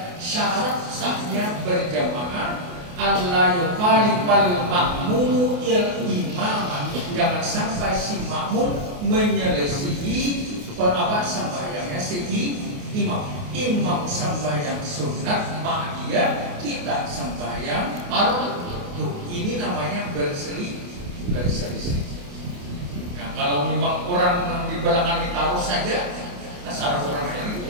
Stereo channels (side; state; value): left; late; 28 ms